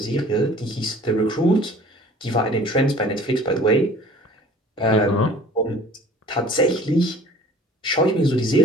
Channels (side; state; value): both; normal; correlation 0.48